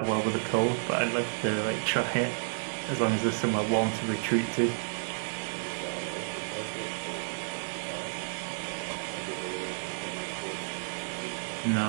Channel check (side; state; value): left; silent; digital silence